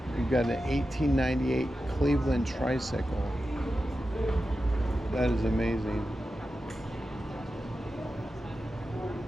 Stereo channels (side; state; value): both; normal; correlation 0.92